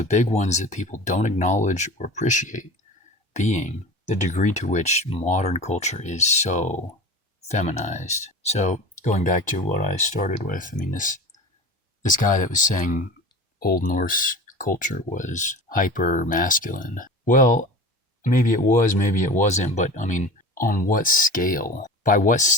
big ones that people don't acknowledge or appreciate being the degree to which modern culture is so feminized. So going back to what I started with, I mean, this guy that was saying Old Norse culture was hyper masculine. Well, maybe it was, maybe it wasn't, but I mean, on what scale? By what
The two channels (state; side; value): normal; both; correlation 0.35